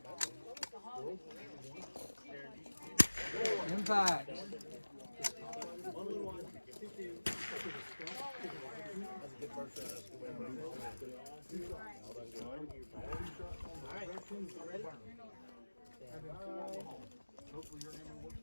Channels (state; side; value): inverted; both; correlation -1.00